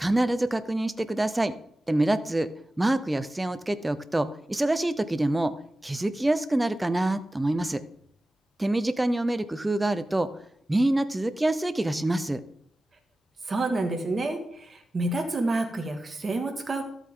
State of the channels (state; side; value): normal; both; correlation 0.95